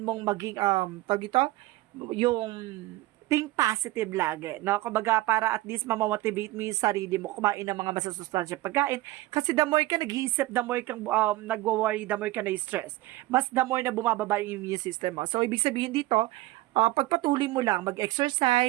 maging, tawag ito, yung think positive lagi. No? Kumbaga para at least mamamotivate mo yung sarili mo kumain ng mga masasustansya pagkain. Kasi the more ka nag-iisip, the more kang nagwo-worry, the more ka na-stress. Mas the more na bumababa yung immune system mo. So, ibig sabihin dito, pagpatuloy mo lang,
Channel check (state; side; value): quieter; left; 18.1 dB